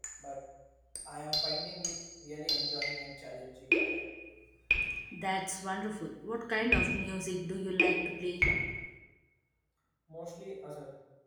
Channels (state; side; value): identical; both; correlation 1.00